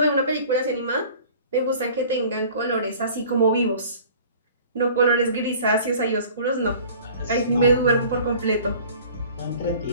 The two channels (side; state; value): both; inverted; correlation -0.47